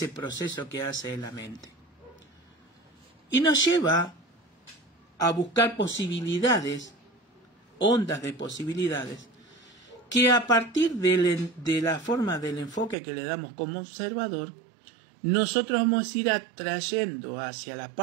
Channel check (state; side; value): drops out; left; at 13.0 s